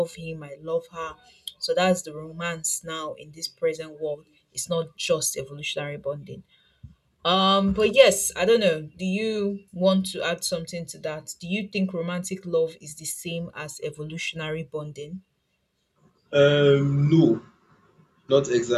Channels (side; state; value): both; identical; correlation 1.00